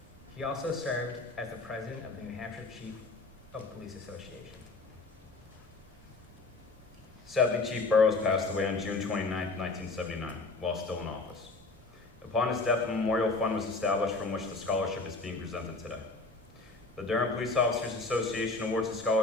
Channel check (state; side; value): quieter; right; 3.5 dB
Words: He also served as the president of the New Hampshire Chief of Police Association. Sadly, Chief Burrows passed away on June 29, 1979, while still in office. Upon his death, a memorial fund was established from which the scholarship is being presented today. The Durham Police Officers Association awards a